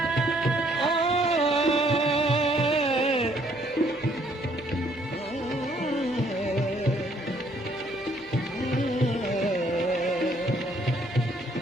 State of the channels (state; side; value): normal; both; correlation 0.65